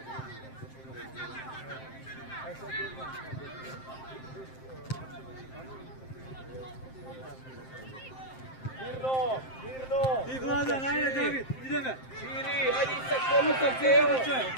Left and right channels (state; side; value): late; right; 7.7 ms